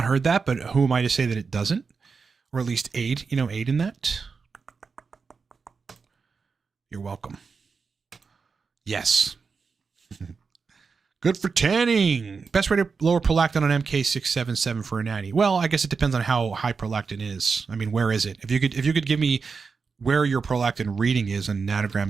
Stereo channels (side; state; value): left; quieter; 5.1 dB